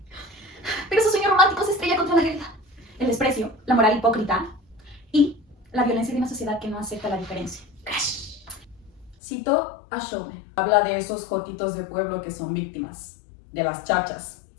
Pero su sueño romántico se estrella contra la realidad, el desprecio, la moral hipócrita y la violencia de una sociedad que no acepta la diferencia. Crash. Cito a Shomen. Habla de esos jotitos de pueblo que son víctimas, de las chachas,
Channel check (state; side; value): drops out; right; at 9.2 s